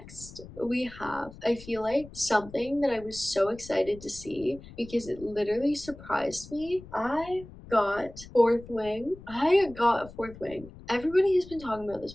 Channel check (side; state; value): left; noise; rumble, 18 dB below the sound